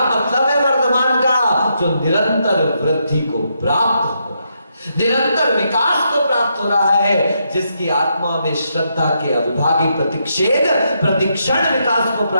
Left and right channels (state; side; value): inverted; both; correlation -0.79